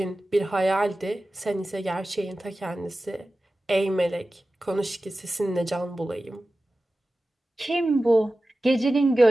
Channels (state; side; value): normal; both; correlation 0.95